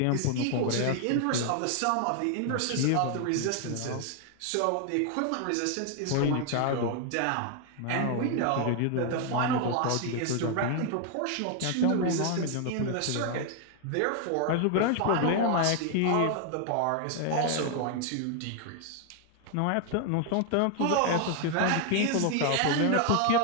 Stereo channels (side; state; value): both; different; correlation 0.00